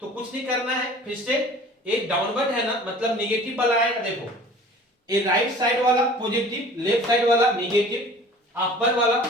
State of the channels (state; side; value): normal; both; correlation 0.46